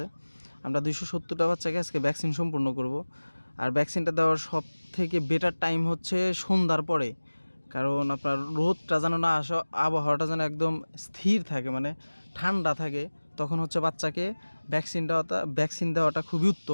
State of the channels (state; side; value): inverted; both; correlation -1.00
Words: আমরা 270টা বাচ্চাকে আজকে ভ্যাকসিন সম্পূর্ণ করব। আর ভ্যাকসিনটা দেওয়ার সব থেকে বেটার টাইম হচ্ছে সন্ধ্যার পরে, কারণ আপনার রোদটা যেন না আসে, আবহাওয়াটা যেন একদম স্থির থাকে, মানে ঠান্ডা থাকে। তখন হচ্ছে বাচ্চাকে ভ্যাকসিন দেওয়াটা খুবই